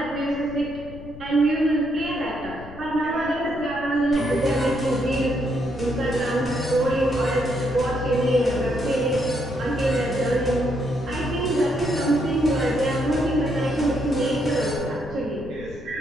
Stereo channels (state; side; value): noise; left; rumble, 17 dB below the sound